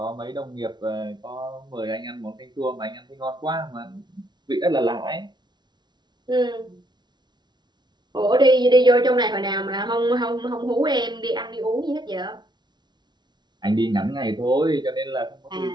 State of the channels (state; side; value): late; left; 0.21 ms